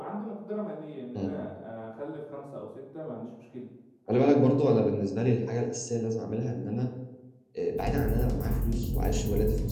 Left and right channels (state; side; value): identical; both; correlation 1.00